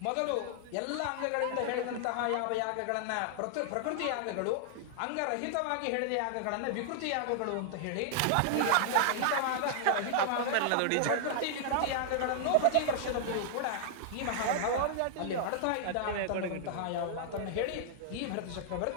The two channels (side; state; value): both; different; correlation -0.01